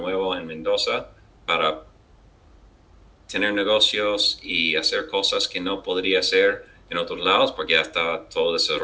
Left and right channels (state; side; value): identical; both; correlation 1.00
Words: en Mendoza para tener negocios y hacer cosas que no podría hacer en otros lados porque ya estaba todo